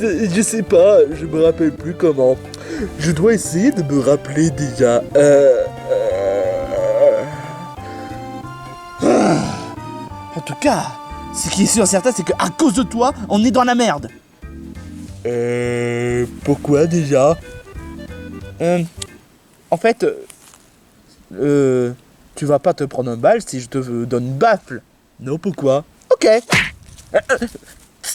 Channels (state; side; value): identical; both; correlation 1.00